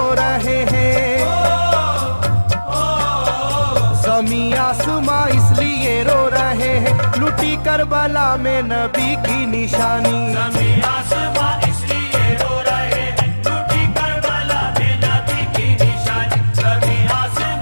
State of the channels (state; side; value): inverted; both; correlation -1.00